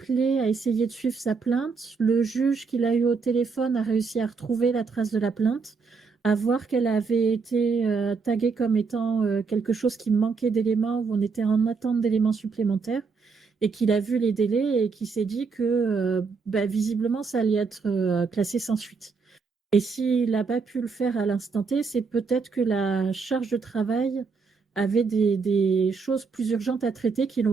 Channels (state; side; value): quieter; left; 4.9 dB